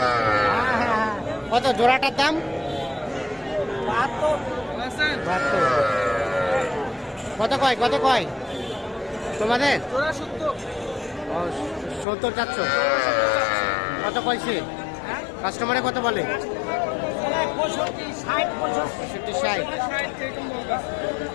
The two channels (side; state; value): right; drops out; at 12.1 s